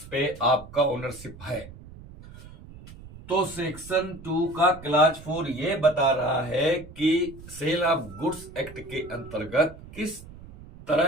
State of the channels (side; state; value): right; noise; rumble, 17 dB below the sound